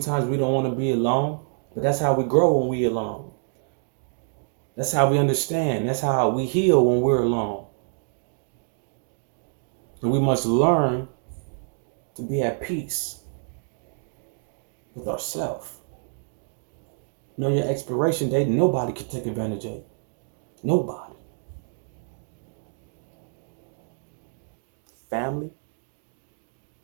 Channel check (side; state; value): left; silent; digital silence